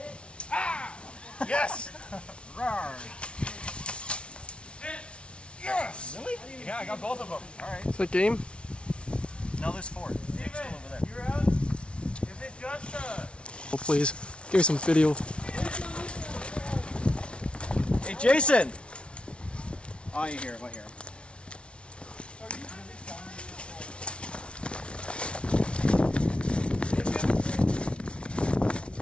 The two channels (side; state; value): right; late; 0.059 ms